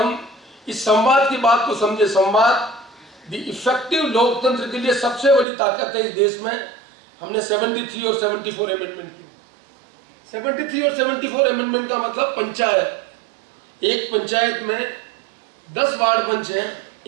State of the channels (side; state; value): left; drops out; at 5.5 s